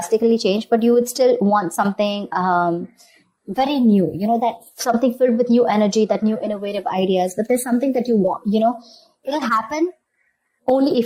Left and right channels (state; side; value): identical; both; correlation 1.00